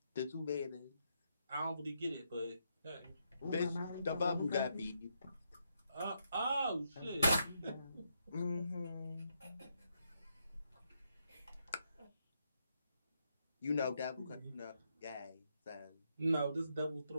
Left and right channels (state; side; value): inverted; both; correlation -0.79